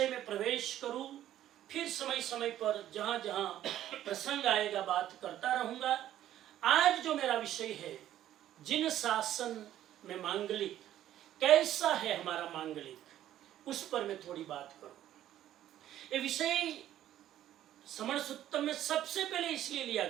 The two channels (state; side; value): quieter; left; 12.3 dB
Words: में प्रवेश करूं, फिर समय समय पर जहां जहां प्रसंग आएगा बात करता रहूंगा। आज जो मेरा विषय है, जिन शासन में मांगलिक, कैसा है हमारा मांगलिक, उस पर मैं थोड़ी बात करूं। ये विषय समण सुत्तम में सबसे पहले इसलिए लिया